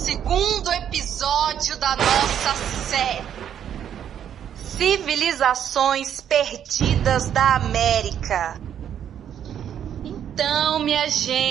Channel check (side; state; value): left; quieter; 9.5 dB